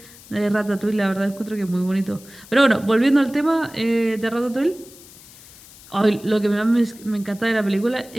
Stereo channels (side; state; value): left; noise; hiss, 21 dB below the sound